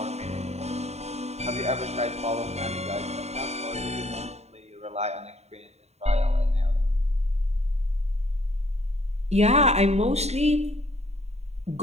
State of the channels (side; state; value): left; late; 0.31 ms